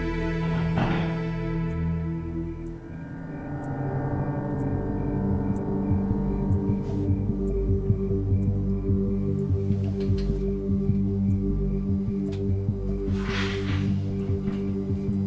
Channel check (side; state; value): both; identical; correlation 1.00